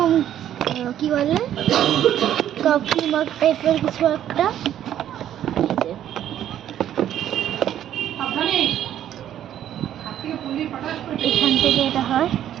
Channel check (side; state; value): left; quieter; 11.1 dB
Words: কি বলে কফি মগ টাইপের কিছু একটা। এখান থেকে এটা হয়